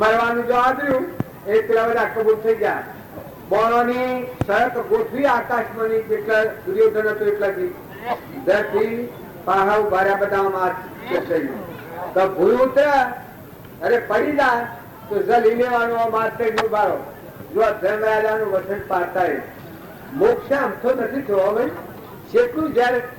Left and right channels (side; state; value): both; identical; correlation 1.00